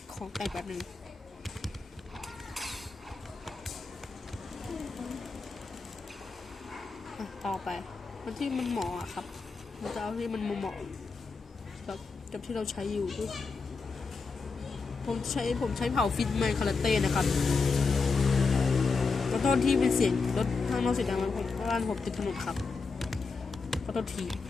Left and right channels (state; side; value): quieter; right; 4.5 dB